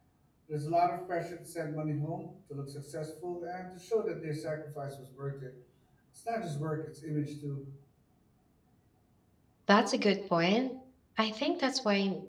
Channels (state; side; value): identical; both; correlation 1.00